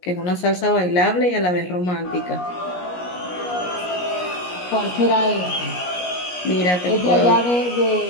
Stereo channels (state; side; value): late; right; 17 ms